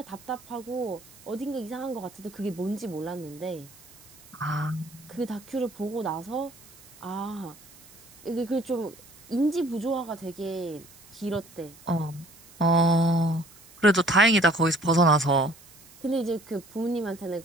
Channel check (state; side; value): noise; right; hiss, 23 dB below the sound